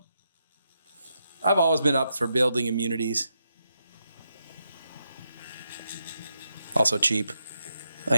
I've always been up for building immunities. Also cheap. I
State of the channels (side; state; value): both; inverted; correlation -0.83